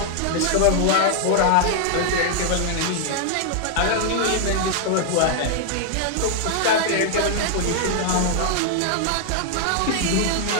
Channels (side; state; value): both; different; correlation 0.00